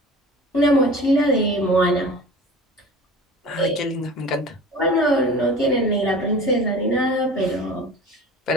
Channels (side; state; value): both; normal; correlation 0.39